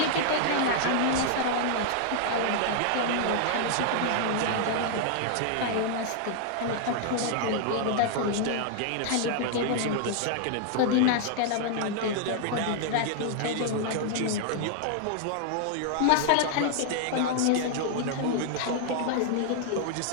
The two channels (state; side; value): different; both; correlation 0.00